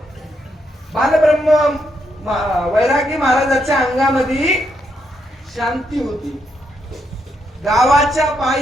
बालब्रह्म वैरागी महाराजाच्या अंगामध्ये शांती होती. गावाच्या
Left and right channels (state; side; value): normal; both; correlation 0.78